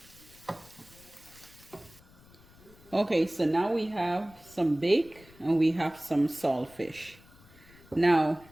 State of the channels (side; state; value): left; noise; rumble, 25 dB below the sound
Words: Okay, so now we have some bake and we have some saltfish. Now